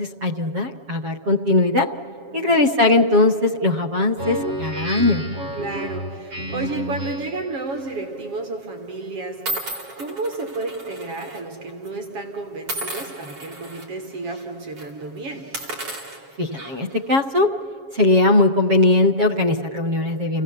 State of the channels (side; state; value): left; late; 7.3 ms